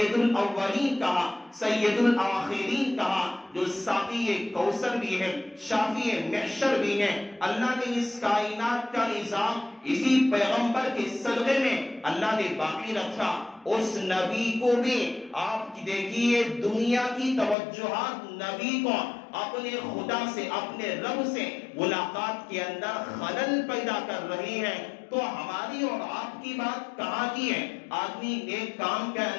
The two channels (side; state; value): right; drops out; at 17.6 s